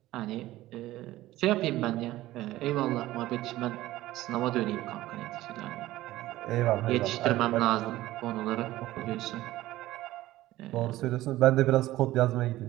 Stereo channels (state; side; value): quieter; left; 16.3 dB